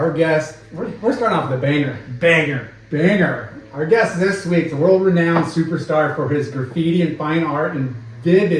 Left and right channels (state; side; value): identical; both; correlation 1.00